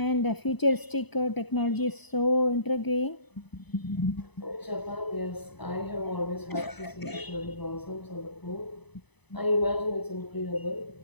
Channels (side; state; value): right; late; 0.99 ms